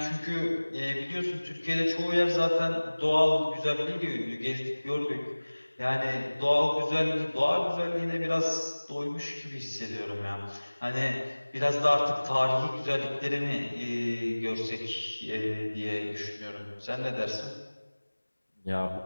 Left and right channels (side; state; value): both; inverted; correlation -1.00